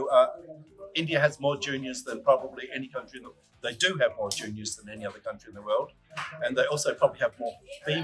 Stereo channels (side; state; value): both; identical; correlation 1.00